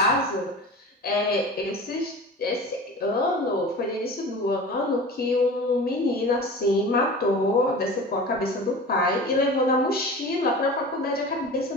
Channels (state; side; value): normal; both; correlation 0.36